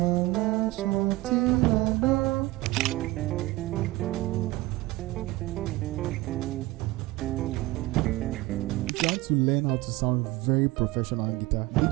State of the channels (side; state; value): left; quieter; 19.8 dB